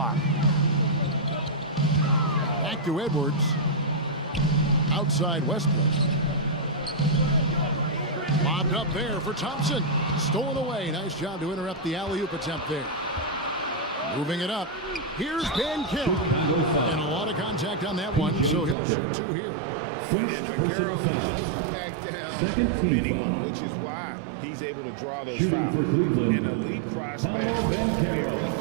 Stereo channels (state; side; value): drops out; left; at 18.8 s